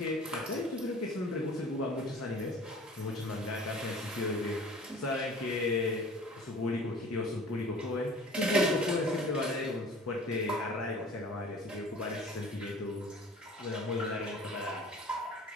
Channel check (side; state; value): both; normal; correlation 0.45